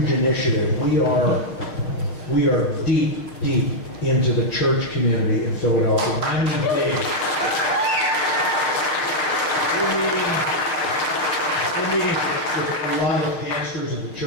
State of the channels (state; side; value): late; right; 6.7 ms